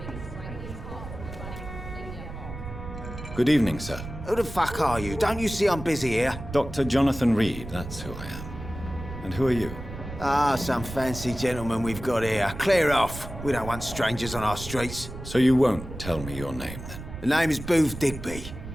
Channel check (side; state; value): right; noise; rumble, 10 dB below the sound